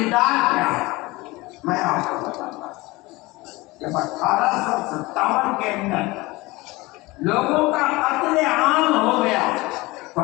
کیا ہے۔ میں آپ کو بتاتا ہوں، جب 1857 کے اندر لوگوں کا قتل عام ہو گیا تو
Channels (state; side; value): quieter; right; 21.8 dB